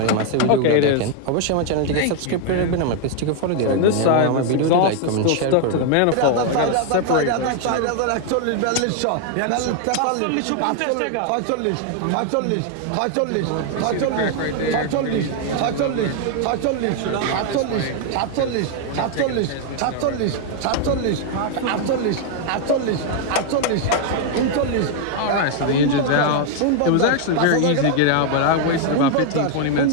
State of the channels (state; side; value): different; both; correlation 0.00